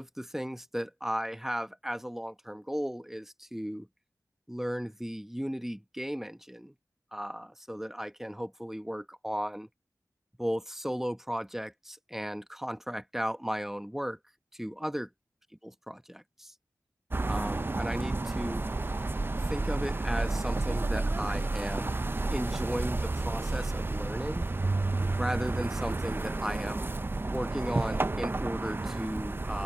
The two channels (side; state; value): both; normal; correlation 0.96